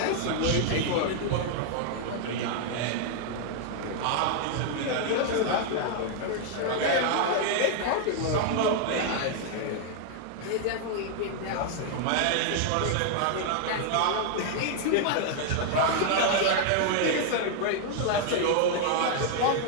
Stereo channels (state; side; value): different; both; correlation 0.00